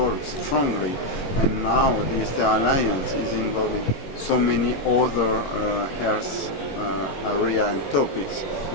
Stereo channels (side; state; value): right; late; 22 ms